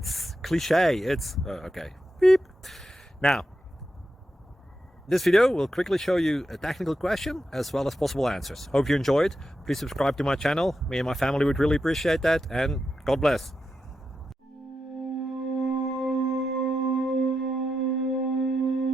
cliche. It's okay. Beep. Now, this video will quickly show you a technical question as well as possible answers. Hope you enjoyed. Please subscribe to my channel. Me and my family would really appreciate that, and God bless.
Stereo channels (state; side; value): normal; both; correlation 0.88